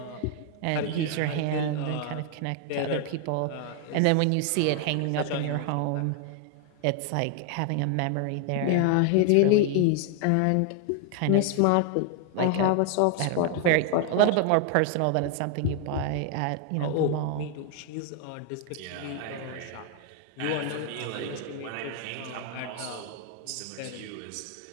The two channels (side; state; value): both; different; correlation 0.00